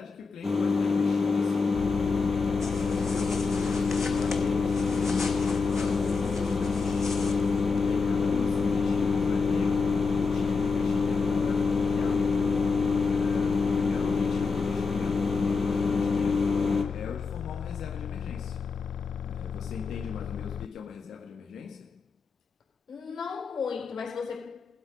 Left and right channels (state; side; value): quieter; right; 4.6 dB